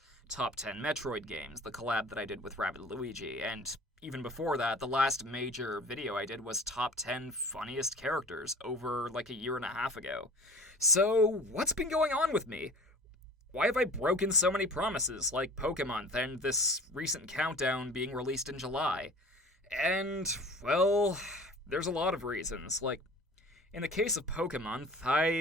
Top 10 Metroid Games, the collab that I did with Rabbid Luigi, and even before that, the last major video I did was Top 10 Funniest Characters over like a year and a half ago. So, what's been going on with me? Why have I broken so many promises, like Pokemon and this recent countdown being released in July? And, well, there's a lot of reasons. Like, in the case of Pokemon,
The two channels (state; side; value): normal; both; correlation 0.42